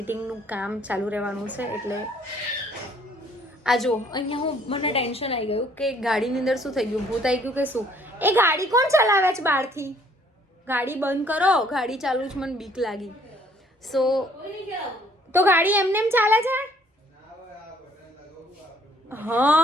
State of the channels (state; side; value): normal; both; correlation 0.61